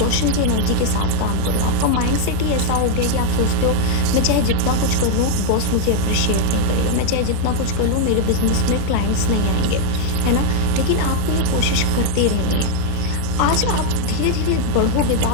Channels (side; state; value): both; different; correlation 0.00